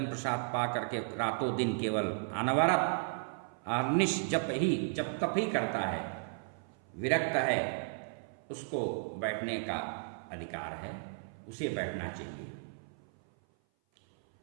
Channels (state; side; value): silent; left; 55 dB below the other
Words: प्रसाद पा करके रातों दिन केवल अनवरत अनिश जप तप ही करता है, विरक्त है, उसको बैठने का अधिकार है, उसे बैठना चाहिए।